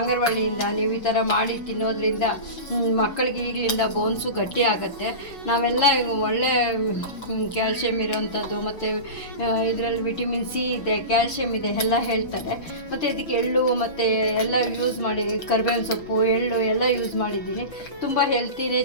ನೀವು ಈ ಥರ ಮಾಡಿ ತಿನ್ನೋದ್ರಿಂದ ಮಕ್ಕಳಿಗೆ ಈಗಲಿಂದ ಬೋನ್ಸು ಗಟ್ಟಿ ಆಗುತ್ತೆ. ನಾವೆಲ್ಲ ಒಳ್ಳೆ ಕ್ಯಾಲ್ಶಿಯಮ್ ಇರೋವಂಥದ್ದು ಮತ್ತು ಇದರಲ್ಲಿ ವಿಟಮಿನ್ ಸಿ ಇದೆ, ಕ್ಯಾಲ್ಶಿಯಮ್ ಇದೆ ಎಲ್ಲ ಹೇಳ್ತಾರೆ. ಮತ್ತು ಇದಕ್ಕೆ ಎಳ್ಳು ಮತ್ತು ಎಲ್ಲ ಯೂಸ್ ಮಾಡಿ, ಕರಿಬೇವಿನ ಸೊಪ್ಪು, ಎಳ್ಳು ಎಲ್ಲ ಯೂಸ್ ಮಾಡಿದ್ದೀನಿ. ತುಂಬ ಹೆಲ್ತಿನೇ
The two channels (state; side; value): late; right; 6.3 ms